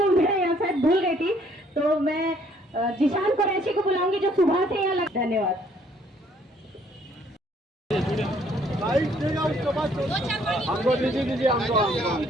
मैं यहाँ शायद भूल गई थी, तो मैं जिशान कुरैशी को बुलाऊंगी जो सुबह से यहाँ लग। धन्यवाद। हमको दीजिए हमको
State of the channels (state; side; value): normal; both; correlation 0.63